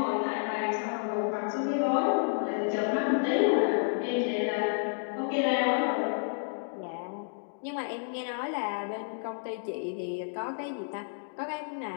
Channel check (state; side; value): silent; right; digital silence